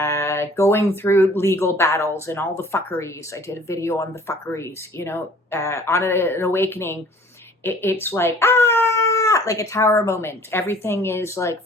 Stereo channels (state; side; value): normal; both; correlation 0.52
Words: going through legal battles and all the fuckeries. I did a video on the fuckeries, on an awakening. It's like a tower moment. Everything is like